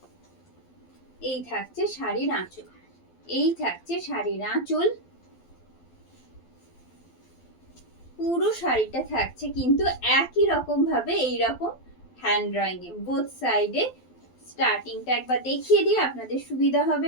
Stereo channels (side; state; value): right; late; 12 ms